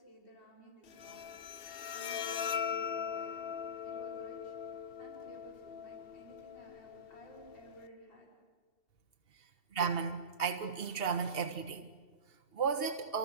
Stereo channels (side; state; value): right; late; 2.7 ms